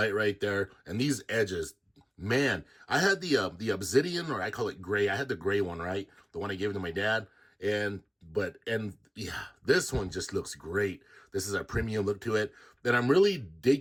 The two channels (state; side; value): identical; both; correlation 1.00